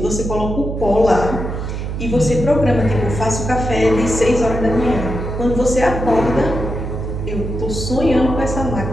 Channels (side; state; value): right; noise; hum, 5 dB below the sound